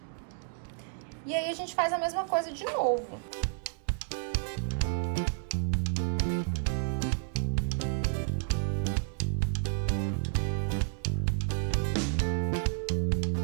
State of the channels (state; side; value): silent; left; digital silence